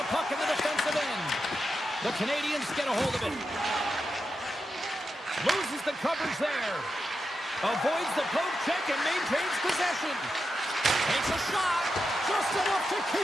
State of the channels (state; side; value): normal; both; correlation 0.88